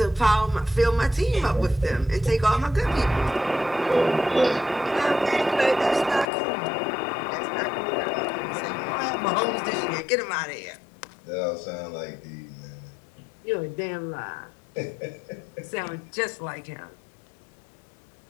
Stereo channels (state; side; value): drops out; right; at 6.2 s